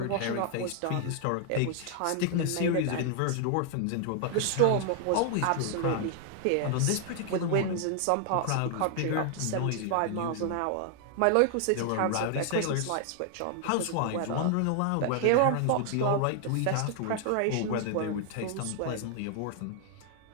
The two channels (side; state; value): both; different; correlation 0.00